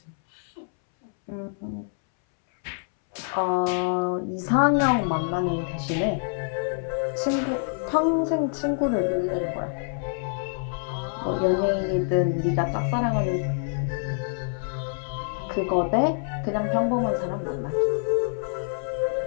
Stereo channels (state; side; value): silent; right; 61 dB below the other